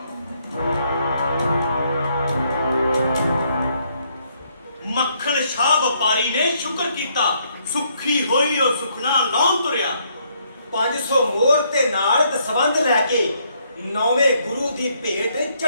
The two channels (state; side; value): inverted; both; correlation -0.71